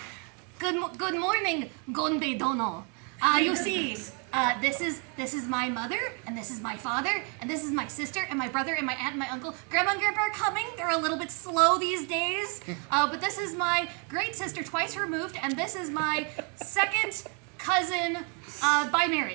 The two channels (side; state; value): left; quieter; 36.9 dB